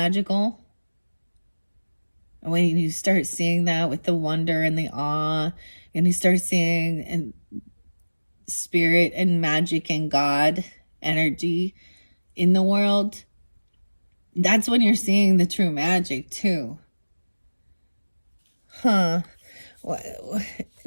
And when you start seeing that with the wonder and the awe, and you start seeing and spirit and magic and God energy in the world, that's when you're seeing the true magic too. What,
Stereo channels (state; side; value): inverted; both; correlation -1.00